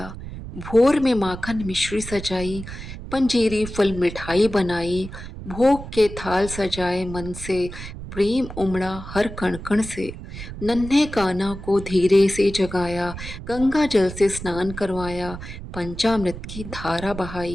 भोर में माखन मिश्री सजाई, पंजीरी फल मिठाई बनाई, भोग के थाल सजाए मन से, प्रेम उमड़ा हर कण कण से। नन्हे कान्हा को धीरे से जगाया, गंगा जल से स्नान करवाया, पंचामृत की धारा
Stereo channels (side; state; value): right; noise; rumble, 11 dB below the sound